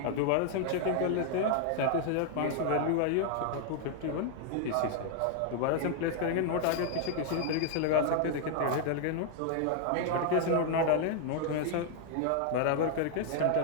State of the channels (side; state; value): both; different; correlation 0.00